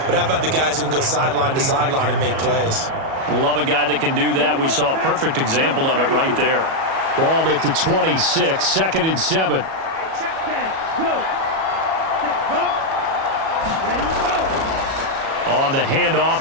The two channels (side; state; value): left; late; 37 ms